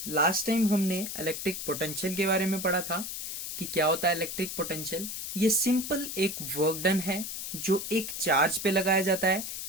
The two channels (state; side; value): noise; left; hiss, 6 dB below the sound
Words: लास्ट टाइम हमने इलेक्ट्रिक पोटेंशियल के बारे में पढ़ा था कि क्या होता है इलेक्ट्रिक पोटेंशियल। ये सिंपल एक वर्क डन है जो एक चार्ज पे लगाया जाता है,